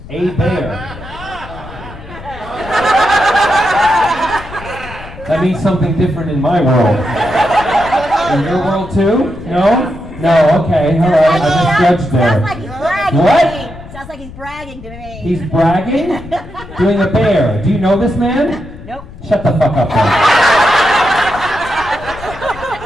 A bear. That means something different in my world. In your world too? No? No, okay, alright, I misjudged there. Sounds like he's bragging What? to me. Sounds like he's bragging to me. He's bragging? Doing a bear. Do you know this man? Nope. Shut the fuck up then.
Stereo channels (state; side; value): noise; left; rumble, 16 dB below the sound